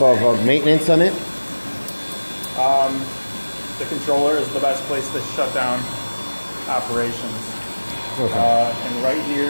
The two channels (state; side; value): inverted; both; correlation -1.00